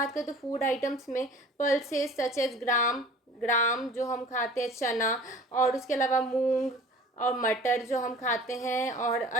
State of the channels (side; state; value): both; normal; correlation 0.45